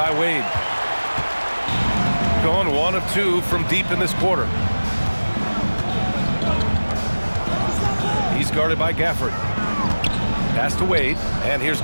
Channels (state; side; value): inverted; both; correlation -1.00